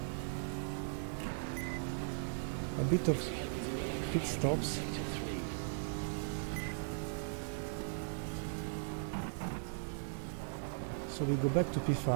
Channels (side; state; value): left; silent; digital silence